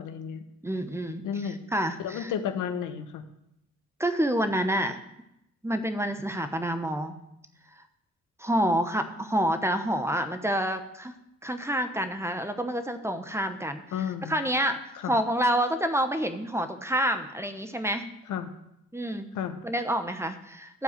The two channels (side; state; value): both; normal; correlation 0.58